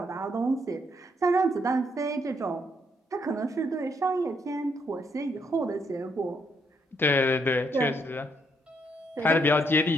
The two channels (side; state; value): both; normal; correlation 0.74